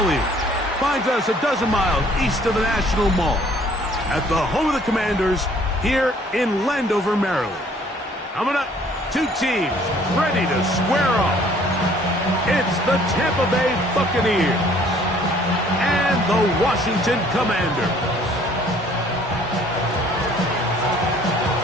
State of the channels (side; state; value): both; normal; correlation 0.58